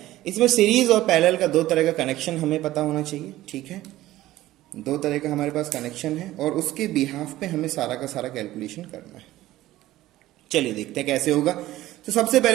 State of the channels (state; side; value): quieter; left; 15.7 dB